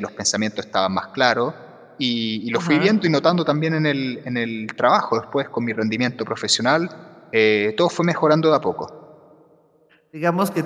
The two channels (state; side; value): identical; both; correlation 1.00